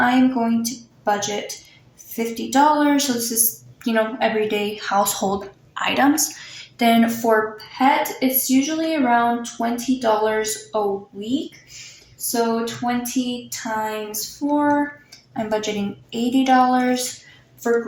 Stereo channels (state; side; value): identical; both; correlation 1.00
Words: going to budget $50. So this is, everyday household items. Then for pet, it's usually around $20 a week. So 20 times 4, I'm budgeting $80. For